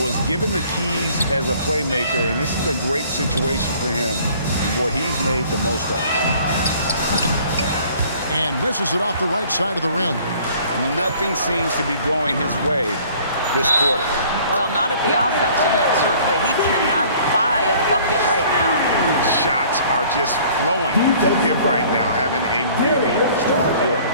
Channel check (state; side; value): inverted; both; correlation -0.53